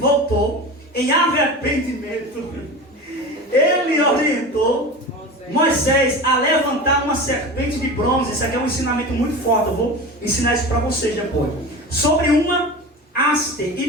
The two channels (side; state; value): both; normal; correlation 0.30